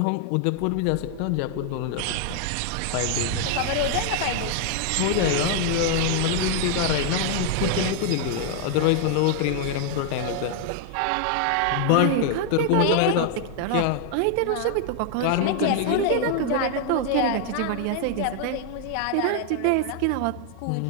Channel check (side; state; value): both; different; correlation 0.00